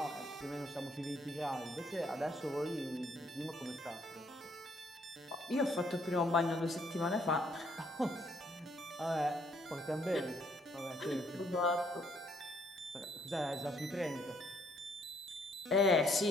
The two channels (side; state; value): both; normal; correlation 0.68